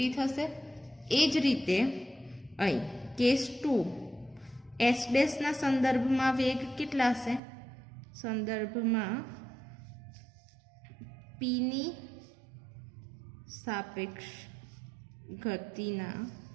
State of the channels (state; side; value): drops out; left; at 7.4 s